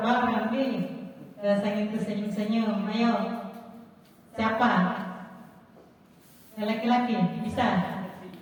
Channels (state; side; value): identical; both; correlation 1.00